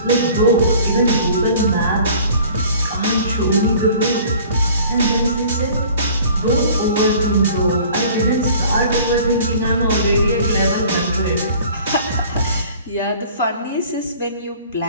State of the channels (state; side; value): inverted; both; correlation -0.49